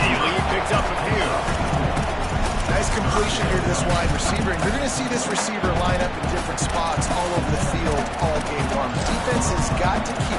He picks up a few. Nice completion here to this wide receiver. And you're going to see this receiver line up in different spots all over the field all game long. The defense has got to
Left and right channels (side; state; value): both; identical; correlation 1.00